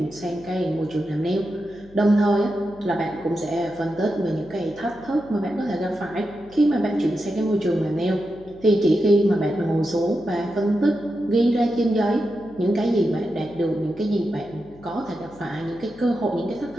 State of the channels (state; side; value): noise; left; hum, 23 dB below the sound